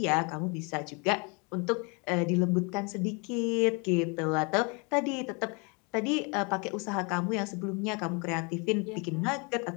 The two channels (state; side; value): quieter; right; 32.1 dB